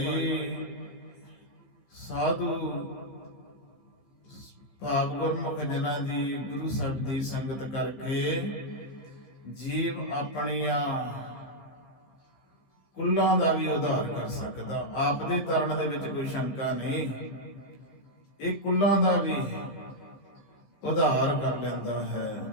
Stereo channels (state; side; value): late; right; 15 ms